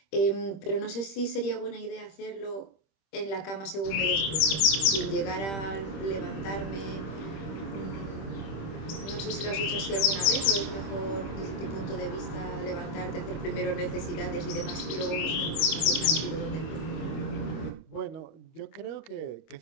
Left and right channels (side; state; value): right; late; 26 ms